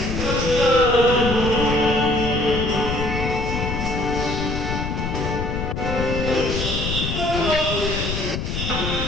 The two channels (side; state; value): left; noise; rumble, 3 dB below the sound